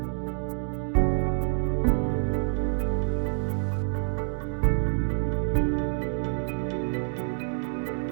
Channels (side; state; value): left; silent; 60 dB below the other